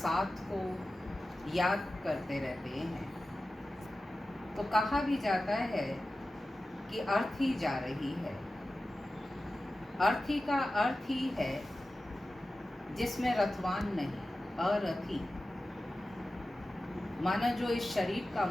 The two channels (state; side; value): normal; both; correlation 0.94